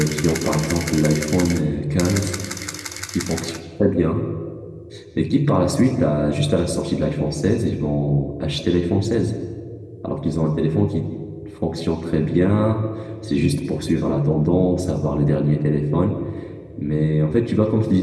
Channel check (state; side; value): identical; both; correlation 1.00